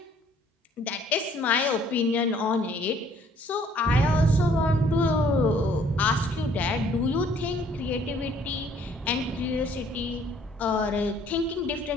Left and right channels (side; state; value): both; normal; correlation 0.60